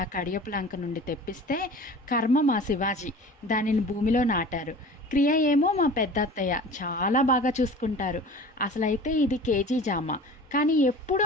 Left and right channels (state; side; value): normal; both; correlation 0.40